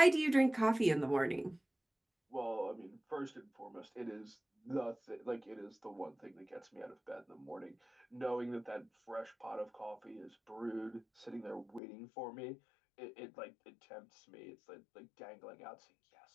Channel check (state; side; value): drops out; right; at 11.8 s